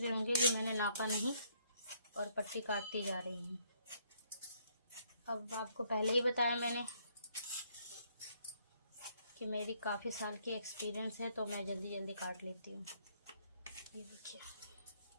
होंगे कि मैंने नापा नहीं और पट्टी काटती जा रही हूँ। अब आपको पहले ही बताया मैंने कि मेरी काफ़ी साल की एक्सपीरियंस है, तो मैं जल्दी जल्दी काट लेती हूँ। ये देखिए,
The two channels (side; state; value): both; inverted; correlation -0.69